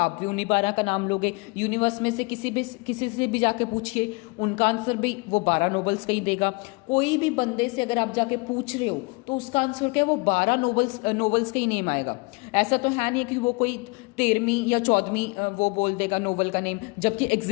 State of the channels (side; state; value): right; quieter; 28.7 dB